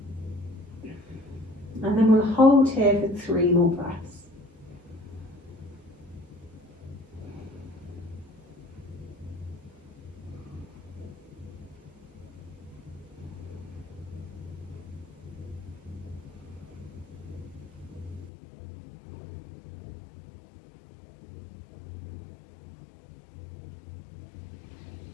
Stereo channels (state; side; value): drops out; right; at 18.3 s